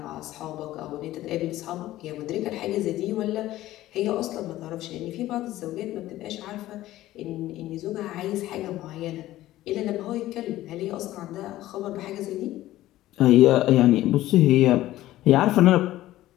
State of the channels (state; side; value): quieter; right; 15.3 dB